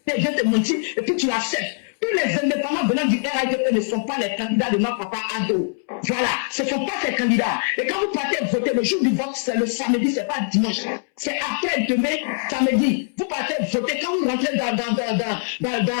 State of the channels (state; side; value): silent; right; 63 dB below the other